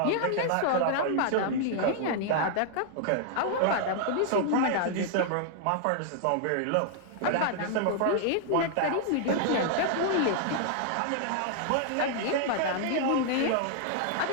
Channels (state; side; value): different; both; correlation -0.01